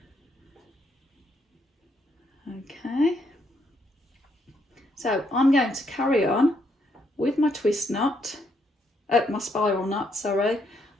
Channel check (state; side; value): normal; both; correlation 0.74